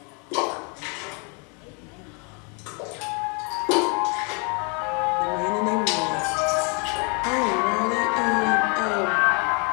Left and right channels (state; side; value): quieter; right; 34.4 dB